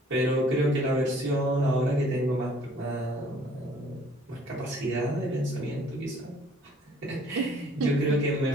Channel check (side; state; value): both; normal; correlation 0.57